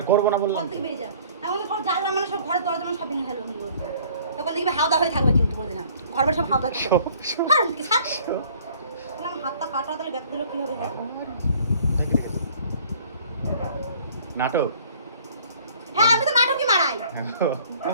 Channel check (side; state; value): both; inverted; correlation -0.54